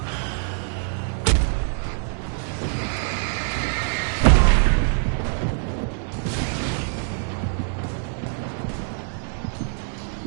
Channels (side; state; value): left; silent; 56 dB below the other